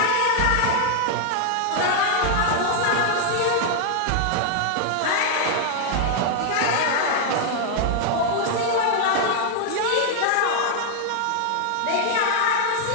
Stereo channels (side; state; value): both; different; correlation 0.00